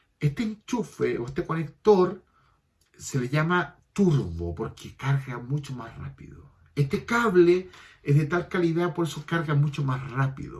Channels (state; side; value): identical; both; correlation 1.00